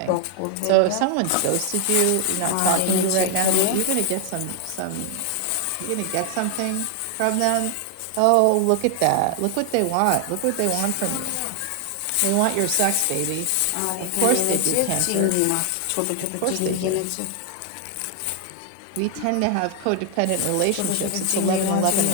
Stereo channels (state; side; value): different; both; correlation 0.00